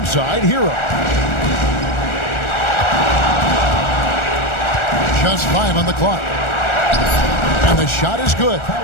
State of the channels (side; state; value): right; late; 1.4 ms